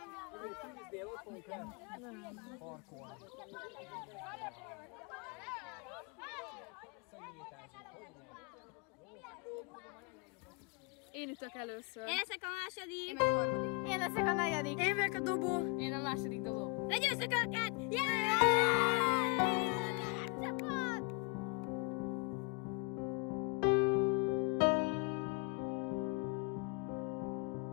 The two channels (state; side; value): quieter; right; 31.2 dB